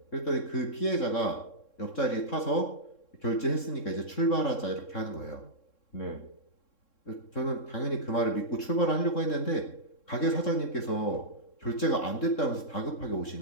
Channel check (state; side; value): late; right; 3.7 ms